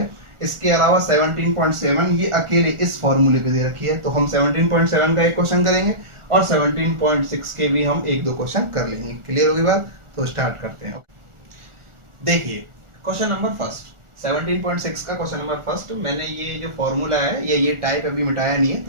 इसके अलावा 17.7 ये अकेले इस फॉर्मूले पे दे रखी है, तो हम 17.7 का एक क्वेश्चन करेंगे और 17.6 के भी हम एक दो क्वेश्चन कर लेंगे। क्लियर होगी बात? तो स्टार्ट करते हैं। देखिए क्वेश्चन नंबर फर्स्ट, 17.6 का क्वेश्चन नंबर फर्स्ट। मैंने ये जो फॉर्मूला है ये टाइप अभी मिटाया नहीं है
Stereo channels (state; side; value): late; left; 1.4 ms